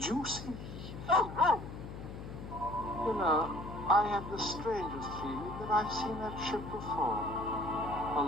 you see? Oh! You know, I have the strangest feeling that I've seen that ship before. A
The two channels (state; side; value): noise; left; hum, 10 dB below the sound